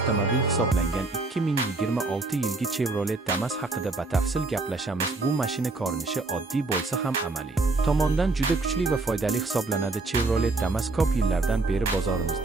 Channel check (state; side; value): quieter; left; 3.4 dB